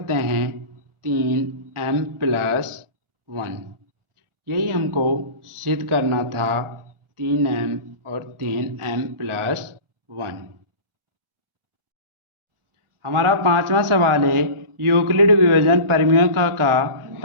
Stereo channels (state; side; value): late; left; 1.4 ms